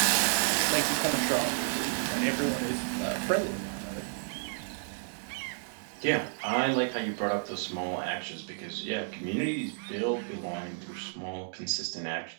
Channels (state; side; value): silent; left; digital silence